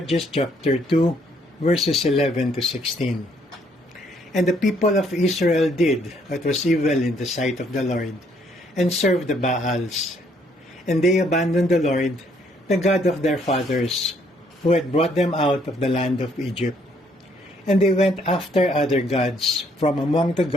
chapter 2, verses 11 to 16. And the people of Israel did what was evil in the sight of the Lord, and served the Baals. And they abandoned the Lord, the God of their fathers, who had brought them out of the land of Egypt. And they went after other gods from among the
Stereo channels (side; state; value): both; normal; correlation 0.67